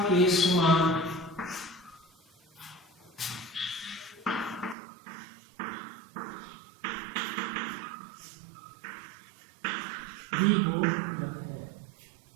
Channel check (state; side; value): drops out; left; at 4.8 s